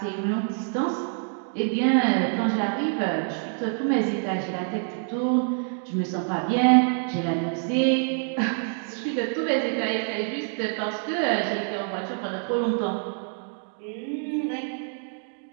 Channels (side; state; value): left; silent; 55 dB below the other